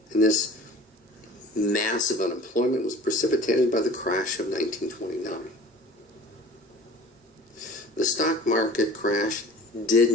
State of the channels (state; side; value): normal; both; correlation 0.44